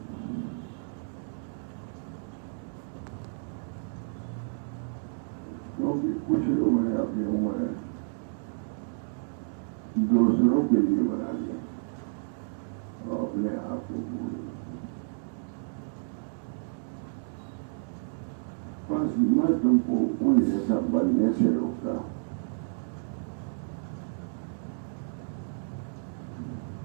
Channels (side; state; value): left; silent; digital silence